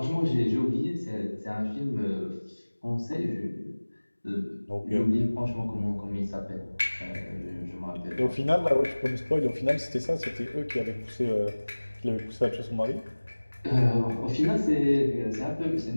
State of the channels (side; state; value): both; inverted; correlation -1.00